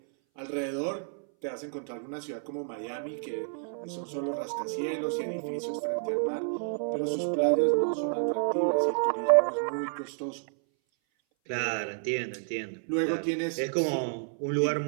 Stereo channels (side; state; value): left; silent; 58 dB below the other